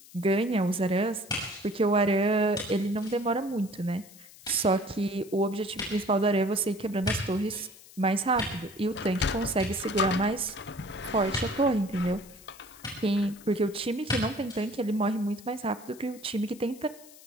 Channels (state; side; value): noise; left; hiss, 21 dB below the sound